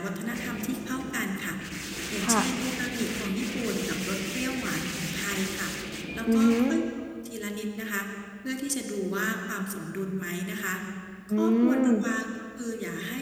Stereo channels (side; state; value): both; identical; correlation 1.00